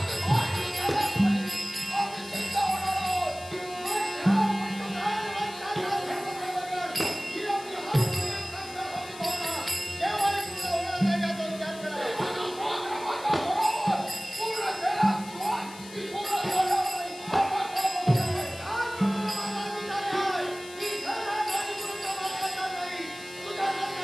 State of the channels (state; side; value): noise; left; hiss, 17 dB below the sound